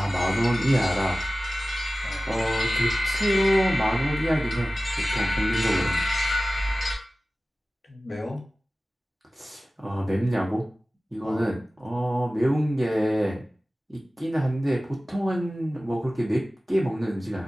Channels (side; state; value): both; normal; correlation 0.96